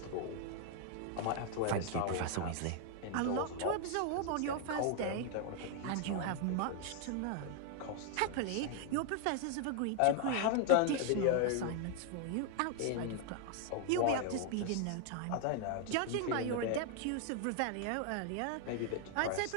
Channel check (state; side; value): different; both; correlation 0.00